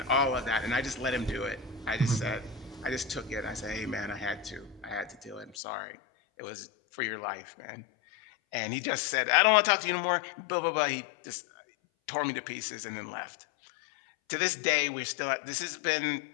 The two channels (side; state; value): right; drops out; at 5.6 s